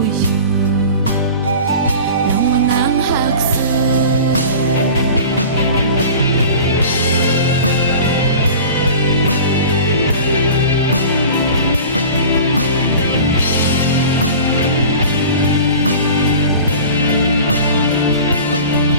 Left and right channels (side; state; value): both; inverted; correlation -0.38